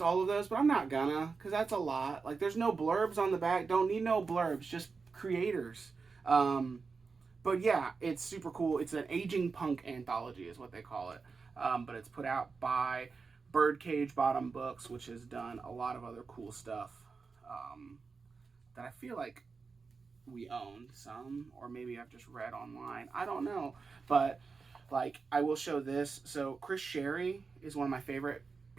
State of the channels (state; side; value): quieter; left; 4.8 dB